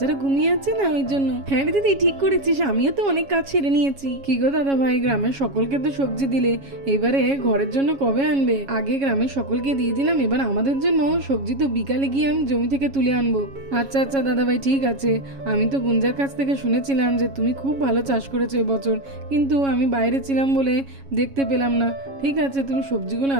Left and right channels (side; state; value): left; late; 7.3 ms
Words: ঘুমিয়ে আছে না ওই জন্য। হ্যাঁ রে দিদি, ঠিক করেছিস, আমিও তো অনেক কাজ সেরে নিয়েছি। কি গো দাদা ভাই, গ্রামের সকলকে তো সবজি দিলে, এবারে ঘরের জন্য কবে আনবে? আগে গ্রামের সকলকে দিয়ে দিলাম, এবার আমাদের জন্য সবজি তো বিকালে গিয়ে আমি জমি থেকে তুলে আনবো। আচ্ছা আচ্ছা দাদা ভাই, ঠিক আছে। আমি তো গুঞ্জার কাছ থেকে শুনেছিলাম যে তুমি খুব ভালো চাষ করেছো এবছর, কিন্তু আমি বাইরে ছিলাম বলে দেখতে পেলাম না। ঠিক আছে, তুমি সবজিগুলো